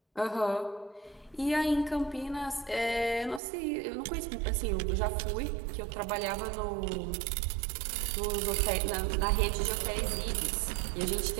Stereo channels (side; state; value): left; drops out; at 3.4 s